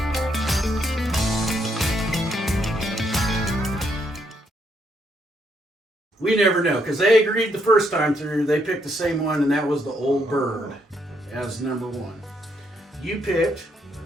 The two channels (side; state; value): both; normal; correlation 0.74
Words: We never know, because they agreed the first time through, they picked the same one, and that was the Old Bird as number one. You picked